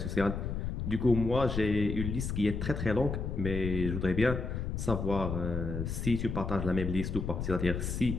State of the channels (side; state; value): left; noise; rumble, 3 dB below the sound